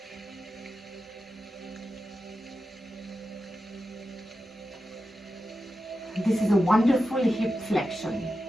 This is a wonderful hip flexion.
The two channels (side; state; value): both; normal; correlation 0.91